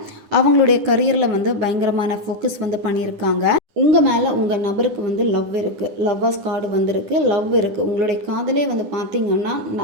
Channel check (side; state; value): left; late; 9.9 ms